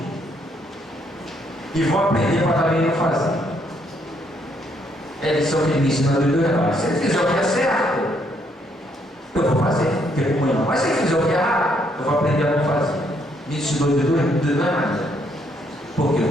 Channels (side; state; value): both; normal; correlation 0.71